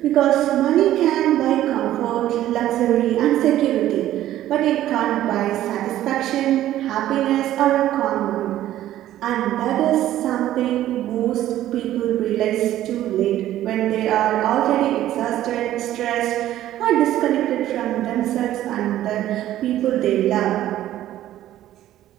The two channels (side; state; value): left; quieter; 13.2 dB